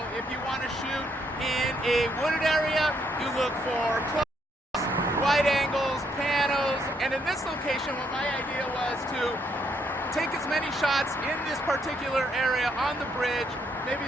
if you want to shoot in a wooded area, you look for close, wide angles, panos, and in this location, what my idea was to take as many shots in this particular area on the bridge, maybe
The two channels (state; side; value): normal; both; correlation 0.73